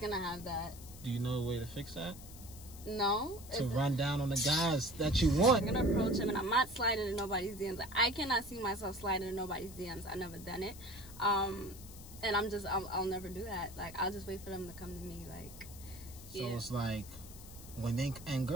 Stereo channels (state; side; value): noise; left; hiss, 17 dB below the sound